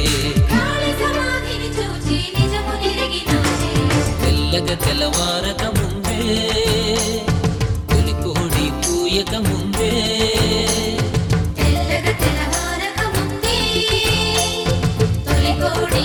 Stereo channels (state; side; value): identical; both; correlation 1.00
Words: తెల్లవారక ముందే తొలి కోడి కూయక ముందే తెల్లవారక ముందే తొలి కోడి